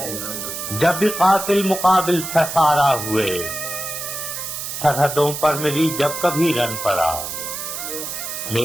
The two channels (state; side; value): noise; right; hiss, 6 dB below the sound